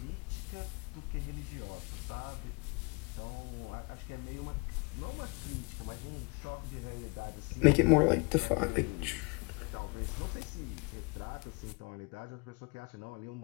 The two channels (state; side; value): quieter; right; 30.6 dB